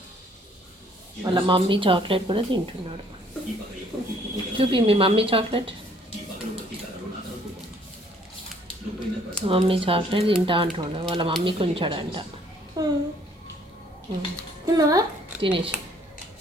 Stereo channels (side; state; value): both; normal; correlation 0.62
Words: వాళ్ళ మమ్మీ చాక్లెట్ కూడా తింటున్నాడు. చూపి మీ మమ్మీ చాక్లెట్. మమ్మీ చాక్లెట్ తింటా అంటుండే. వాళ్ళ మమ్మీకి ఉంచాడంట. తినేసి